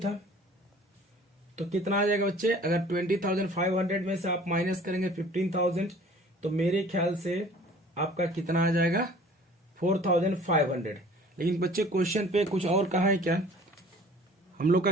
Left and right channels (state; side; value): normal; both; correlation 0.50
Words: तो कितना आ जाएगा बच्चे? अगर 20,500 में से आप माइनस करेंगे 15,000, तो मेरे ख्याल से आपका कितना आ जाएगा, 4,500। लेकिन बच्चे क्वेश्चन पे कुछ और कहा है क्या हम लोग